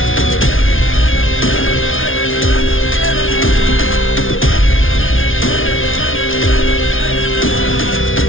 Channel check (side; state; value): right; late; 0.58 ms